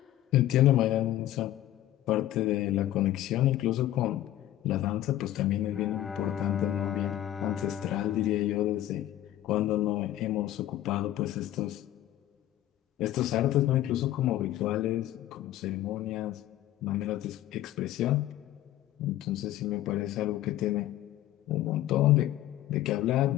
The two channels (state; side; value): quieter; right; 13.6 dB